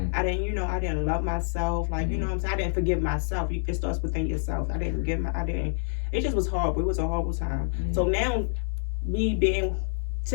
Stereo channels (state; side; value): silent; right; 60 dB below the other